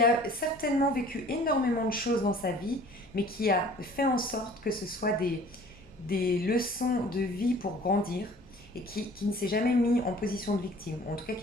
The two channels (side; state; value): left; noise; hum, 28 dB below the sound